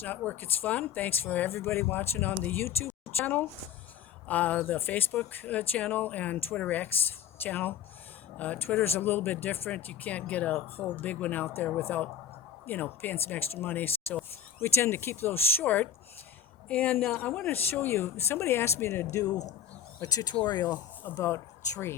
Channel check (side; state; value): right; quieter; 9.1 dB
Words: Not Work, It's Fun. Thanks for everybody watching on the YouTube channel, the Facebook channel, and Twitter X channel. Twitter's a little bit different. You can't get a whole big one out there without, paying some extra money. So we tend to keep those short. And I want to show you, somebody asked me to do a tutorial about